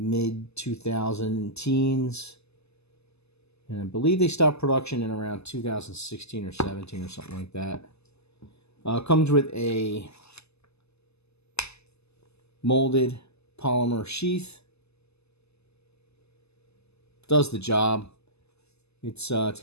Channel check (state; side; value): late; right; 0.79 ms